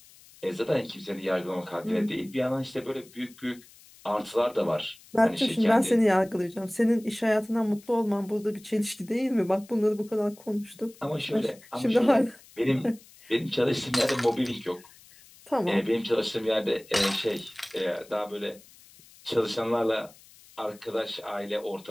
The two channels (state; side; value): noise; left; hiss, 24 dB below the sound